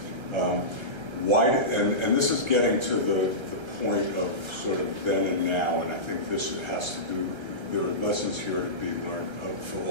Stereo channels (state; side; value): late; left; 1.3 ms